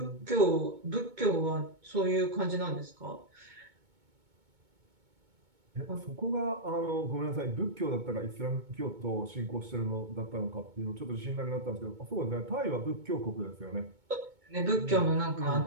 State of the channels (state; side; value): late; left; 2.2 ms